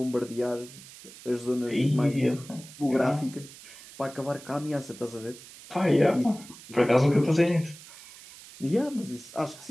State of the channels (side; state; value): right; noise; hiss, 18 dB below the sound